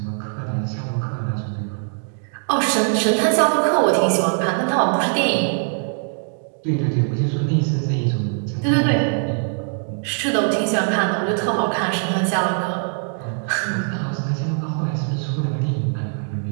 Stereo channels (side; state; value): left; silent; 57 dB below the other